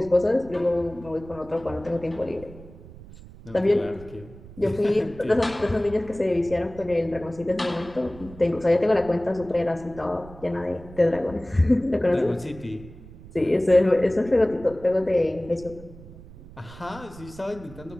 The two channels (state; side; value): noise; right; rumble, 18 dB below the sound